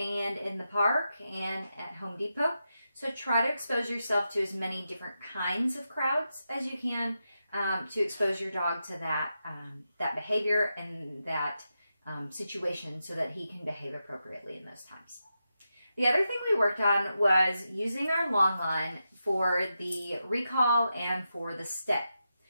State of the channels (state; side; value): inverted; both; correlation -0.88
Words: in the park and at Home Depot. So try to expose yourself to as many different kinds of crowds as you can to expose your dog to that, that behavior and that situation so that he can behave appropriately in those times. The other thing we worked on was using our long line for the recall and for the stay.